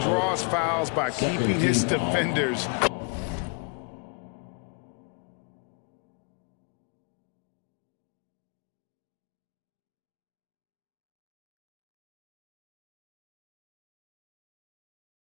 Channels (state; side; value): quieter; right; 36.3 dB